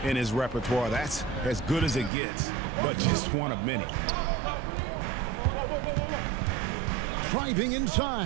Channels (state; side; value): drops out; left; at 2.1 s